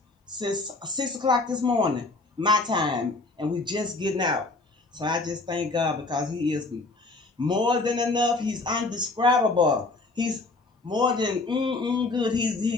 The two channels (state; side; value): quieter; right; 3.4 dB